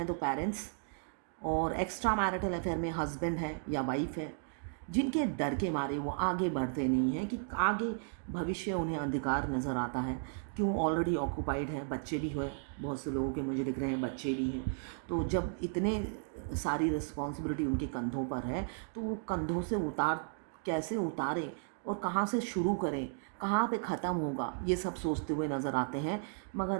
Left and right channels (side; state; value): left; silent; digital silence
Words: तो पेरेंट्स, और एक्स्ट्रा मैरिटल अफेयर में हस्बैंड है या वाइफ है। जिनके डर के मारे वो आगे बढ़ते नहीं हैं कि आगे भविष्य उन्हें अंधकार नज़र आता है। क्यों? ऑलरेडी ऑक्यूपाइड है, बच्चे भी हुए, बहुत से लोगों के मुझे दिख रहे हैं बच्चे भी हैं। तो जब इतने सारी रिस्पॉन्सिबिलिटी उनके कंधों पर है तो वो कंधों से कैसे उतारें और कहाँ से शुरू करें, कहाँ पे ख़त्म होगा, ये सब सोचते हुए नज़र आते हैं।